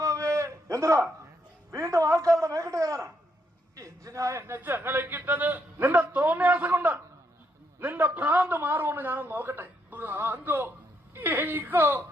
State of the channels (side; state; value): both; normal; correlation 0.76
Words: എന്താ വീണ്ടും ആൾക്കാരുടെ മേക്കിട്ട് കയറാനാ? എന്തിനാ എന്നെ ചങ്ങലക്കിട്ടത്? നിന്റെ തോന്നിയാസം കൊണ്ട് നിന്റെ ഭ്രാന്ത് മാറുമെന്ന് ഞാനൊന്ന് നോക്കട്ടെ. ഭ്രാന്തോ? എനിക്കോ?